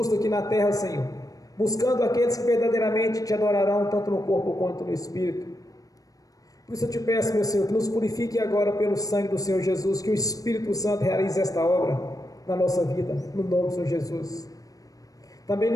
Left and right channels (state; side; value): late; right; 0.17 ms